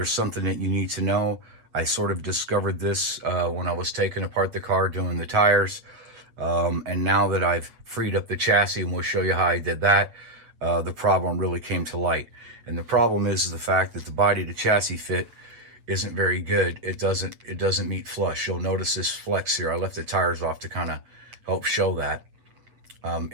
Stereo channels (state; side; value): late; left; 8.1 ms